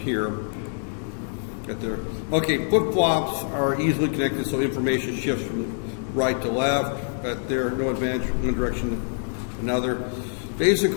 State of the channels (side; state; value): right; silent; digital silence